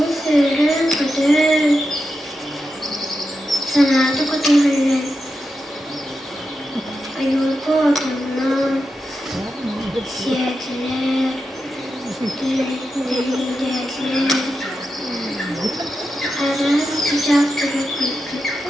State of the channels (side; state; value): both; normal; correlation 0.89